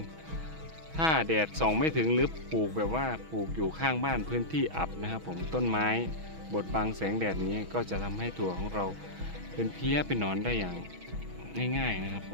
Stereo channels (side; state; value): left; late; 6.2 ms